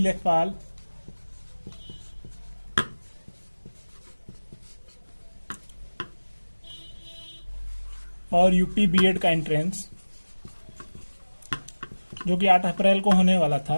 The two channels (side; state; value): both; inverted; correlation -1.00